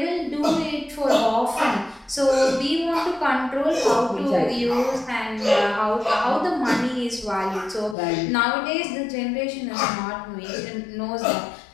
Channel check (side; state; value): right; drops out; at 8.0 s